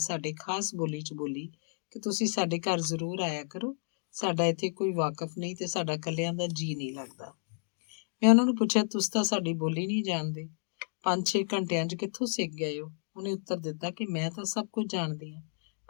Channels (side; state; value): right; silent; digital silence